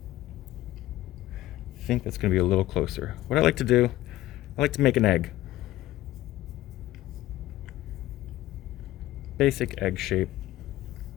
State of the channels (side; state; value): right; quieter; 15.4 dB